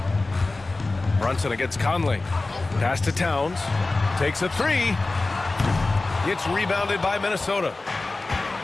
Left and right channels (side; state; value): right; quieter; 3.3 dB